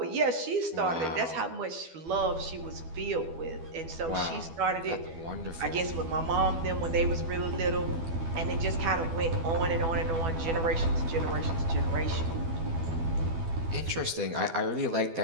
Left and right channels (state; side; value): late; left; 12 ms